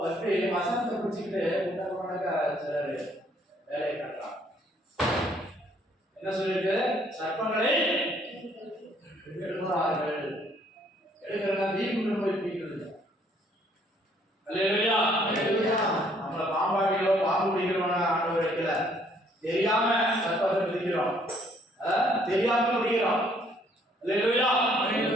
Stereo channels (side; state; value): both; normal; correlation 0.64